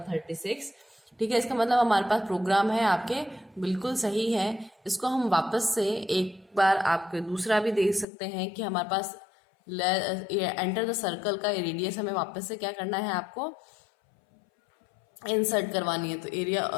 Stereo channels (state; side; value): drops out; right; at 8.1 s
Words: ठीक है, इसका मतलब हमारे पास प्रोग्राम है आपके बिल्कुल सही है। इसको हम वापस से एक बार आपके दूसरा भी देख सकते हैं कि हमारे पास एंटर द सर्कल का रेडियस हमें वापस से क्या करना है, आपको इंसर्ट करवानी है। तो एरिया